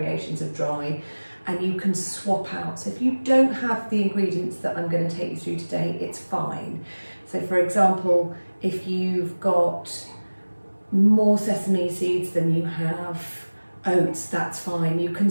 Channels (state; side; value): inverted; both; correlation -1.00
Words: of dry, and you can swap out. So if you don't have the ingredients that I'm going to take you through today, it's fine. So for example, if you've got more sesame seeds than you have oats, that's fine. You can